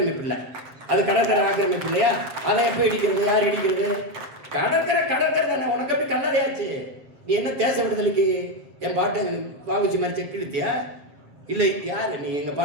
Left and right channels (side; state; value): left; late; 7.6 ms